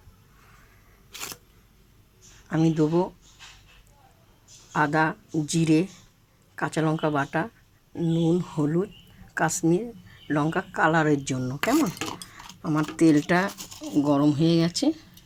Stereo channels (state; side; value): identical; both; correlation 1.00